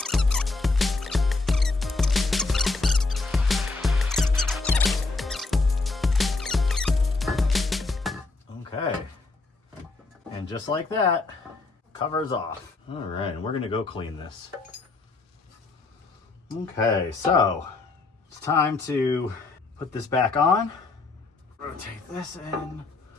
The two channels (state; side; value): quieter; right; 3.6 dB